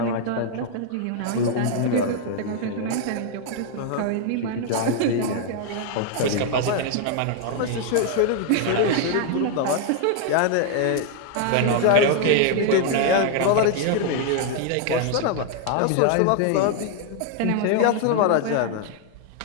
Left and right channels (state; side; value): different; both; correlation 0.00